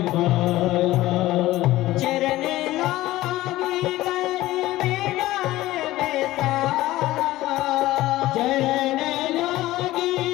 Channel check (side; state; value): right; quieter; 16.6 dB